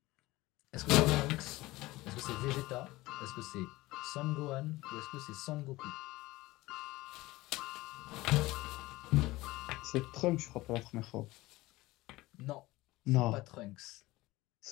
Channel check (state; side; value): quieter; right; 19.3 dB